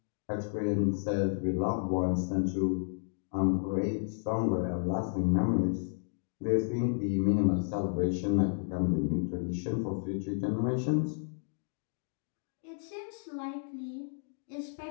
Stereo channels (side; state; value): right; silent; digital silence